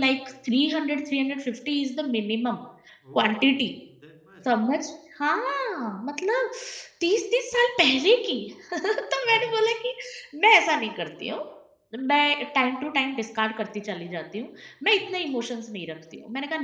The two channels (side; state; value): both; identical; correlation 1.00